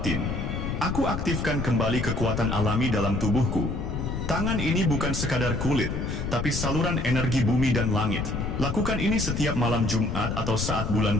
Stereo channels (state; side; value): noise; left; rumble, 3 dB below the sound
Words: aku aktifkan kembali kekuatan alami dalam tubuhku. Tangan ini bukan sekadar kulit, tapi saluran energi bumi dan langit. Lakukan ini setiap malam Jumat atau saat